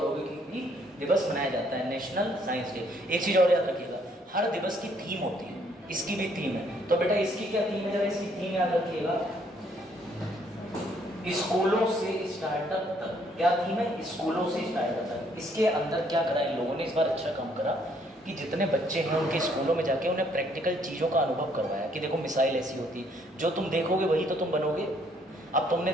दिवस मनाया जाता है, नेशनल साइंस डे। एक चीज और याद रखिएगा, हर दिवस की थीम होती है, इसकी भी थीम है। तो बेटा इसकी क्या थीम है? जरा इसकी थीम याद रखिएगा, स्कूलों से स्टार्टअप तक, क्या थीम है, स्कूलों से स्टार्टअप तक। इसके अंदर क्या करा इन लोगों ने, इस बार अच्छा काम करा कि जितने बच्चे हैं उनके स्कूलों में जाके उन्हें प्रैक्टिकल चीज़ों का अनुभव करवाया कि देखो मिसाइल ऐसी होती है, जो तुम देखोगे वही तो तुम बनोगे। अब तुमने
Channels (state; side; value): normal; both; correlation 0.66